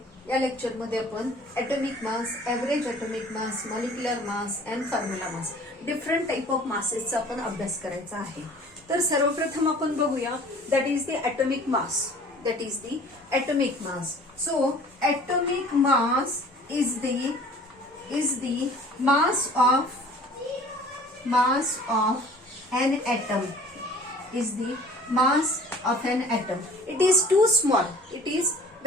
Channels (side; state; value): both; normal; correlation 0.48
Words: या लेक्चर मध्ये आपण atomic mass, average atomic mass, molecular mass and formula mass, different type of मासेसचा आपण अभ्यास करायचा आहे. तर सर्वप्रथम आपण बघूया that is the atomic mass. That is the atomic mass. So atomic mass is the mass of an atom. Is the mass of an atom. It is too small. It is